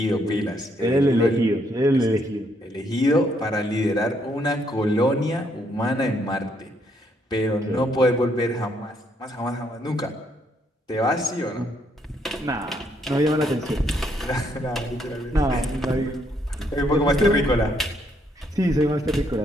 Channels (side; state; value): both; normal; correlation 0.72